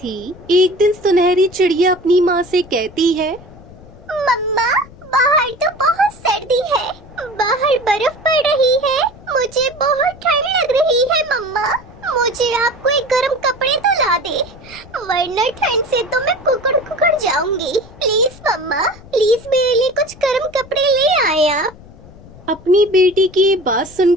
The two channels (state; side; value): noise; left; rumble, 21 dB below the sound